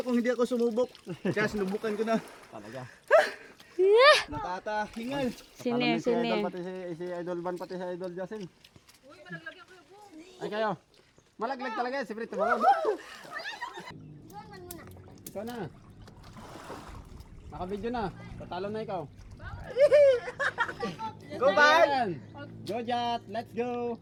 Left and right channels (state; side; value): identical; both; correlation 1.00